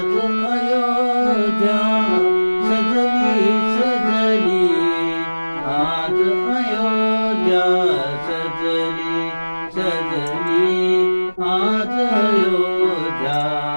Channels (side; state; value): both; inverted; correlation -1.00